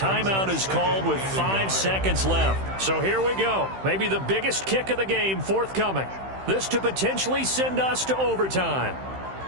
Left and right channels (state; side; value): late; left; 15 ms